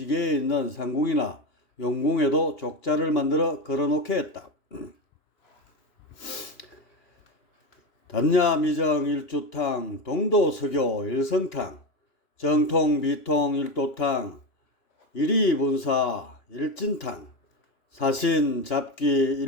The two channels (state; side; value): late; right; 2.8 ms